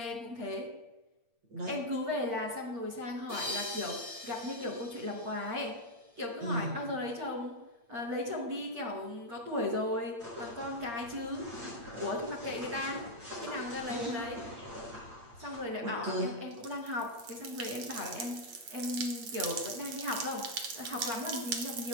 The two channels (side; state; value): left; late; 8.6 ms